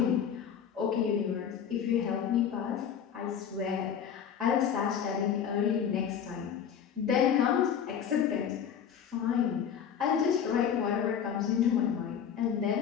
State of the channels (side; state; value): right; quieter; 8.2 dB